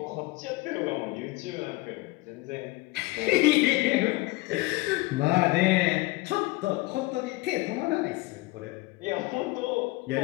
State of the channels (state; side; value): quieter; right; 21.1 dB